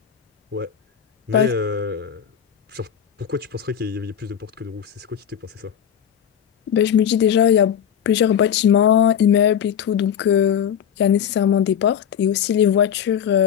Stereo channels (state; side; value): quieter; right; 8.8 dB